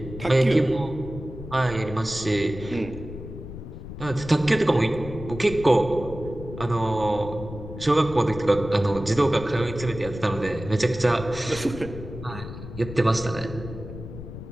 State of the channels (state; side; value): noise; left; rumble, 11 dB below the sound